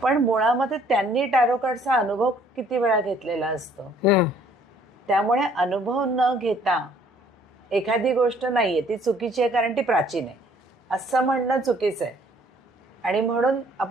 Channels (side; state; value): both; normal; correlation 0.60